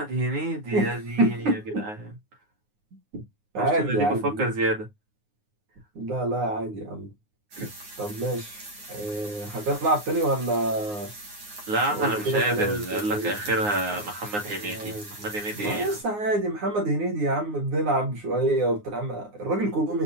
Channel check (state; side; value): late; left; 9.6 ms